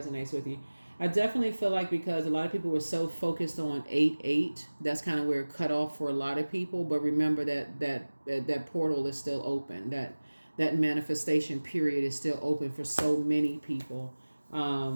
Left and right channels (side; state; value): both; inverted; correlation -1.00